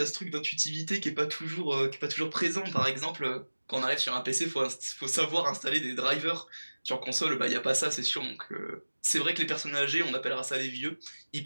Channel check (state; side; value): inverted; both; correlation -1.00